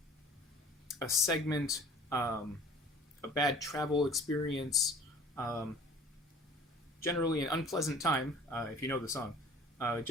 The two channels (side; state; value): both; normal; correlation 0.48